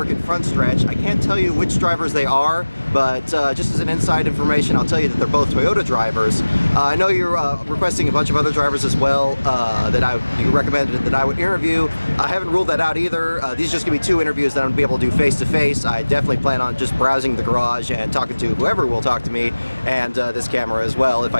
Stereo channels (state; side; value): inverted; both; correlation -1.00